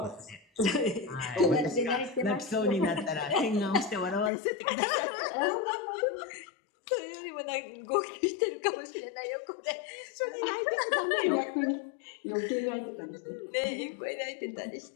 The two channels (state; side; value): drops out; right; at 4.3 s